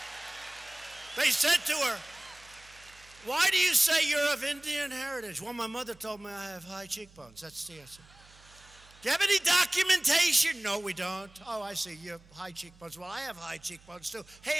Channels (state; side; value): noise; right; hum, 25 dB below the sound